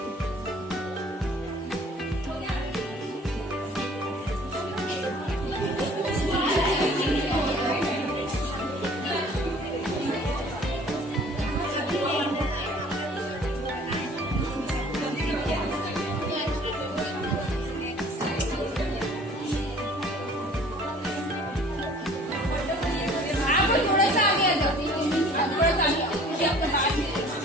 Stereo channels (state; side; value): normal; both; correlation 0.51